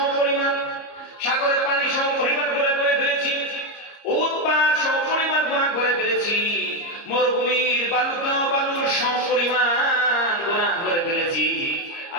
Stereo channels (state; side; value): late; right; 30 ms